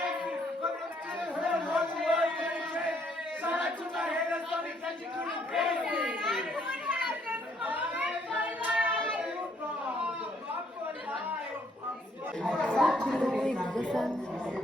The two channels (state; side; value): normal; both; correlation 0.68